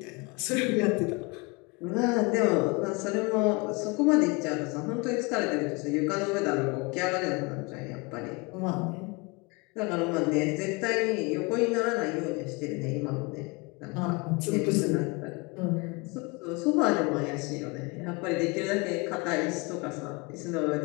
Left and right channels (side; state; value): right; quieter; 27.5 dB